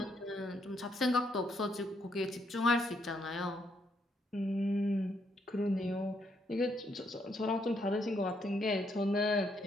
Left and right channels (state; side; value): normal; both; correlation 0.74